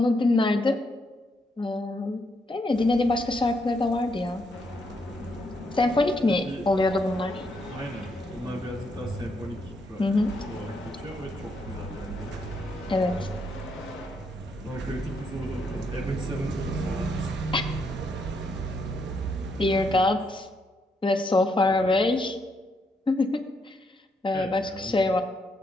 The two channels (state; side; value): normal; both; correlation 0.77